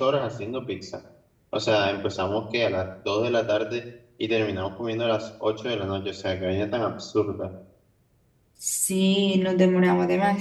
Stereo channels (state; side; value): identical; both; correlation 1.00